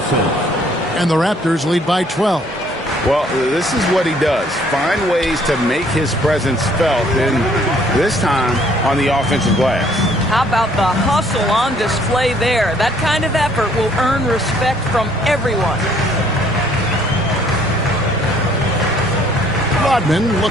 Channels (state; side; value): normal; both; correlation 0.62